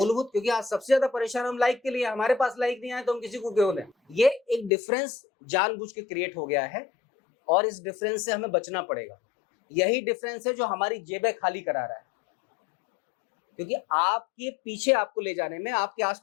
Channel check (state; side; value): drops out; right; at 4.7 s